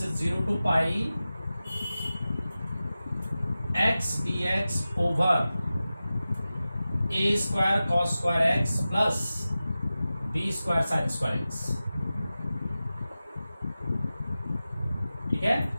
is 0 to pi x dx over a square cos square x plus b square sin square x. ठीक है,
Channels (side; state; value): both; inverted; correlation -0.95